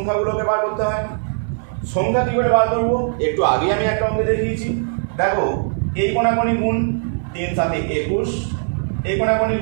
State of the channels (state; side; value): silent; left; digital silence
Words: বার করতে হয়। সংখ্যা কী করে বার করবো? একটু আগে আমি একটা অঙ্কে দেখিয়েছি। দেখো এই কোণাকোণি গুণ 3 7 21, এই কোণাকোণি